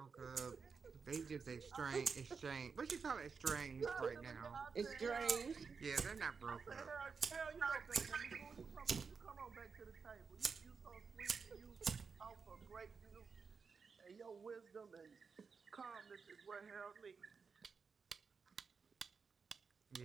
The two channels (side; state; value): left; quieter; 5.4 dB